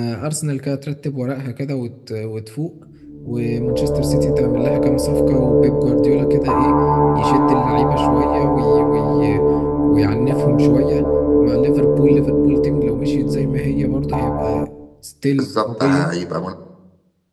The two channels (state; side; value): identical; both; correlation 1.00